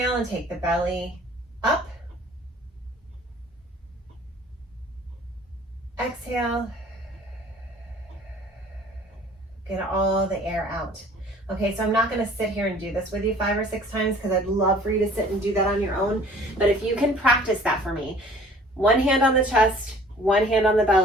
and take the belly up. Exhale. Get all the air out. Okay, so I'm not gonna sit here and do this with you 5 or 6 times, because I'd love for you to sit and do that on your own. But if you can practice that for me, one hand on the chest, one hand on the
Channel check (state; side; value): normal; both; correlation 0.51